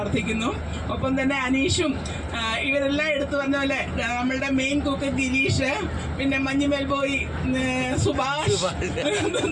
ഒപ്പം തന്നെ അനീഷും ഇവരെല്ലാം എടുത്തു പറഞ്ഞ പോലെ നമ്മളുടെ മെയിൻ കുക്ക് ഗിരീഷ്, പിന്നെ മഞ്ഞുമേൽ ബോയ്, സുഭാഷ്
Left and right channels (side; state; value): both; identical; correlation 1.00